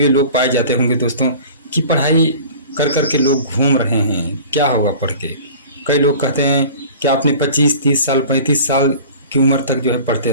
लोग पाए जाते होंगे दोस्तों कि पढ़ाई कर कर के लोग घूम रहे हैं, क्या होगा पढ़ के। कई लोग कहते हैं कि आपने 25-30 साल 35 साल की उम्र तक जो है पढ़ते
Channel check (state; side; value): inverted; both; correlation -0.42